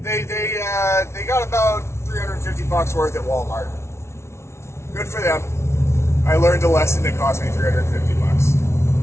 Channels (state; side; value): late; right; 0.13 ms